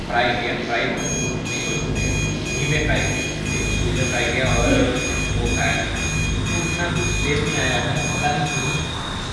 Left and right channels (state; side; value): identical; both; correlation 1.00